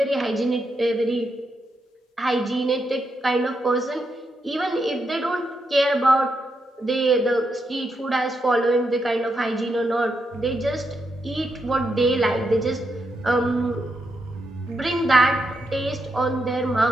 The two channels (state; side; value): normal; both; correlation 0.82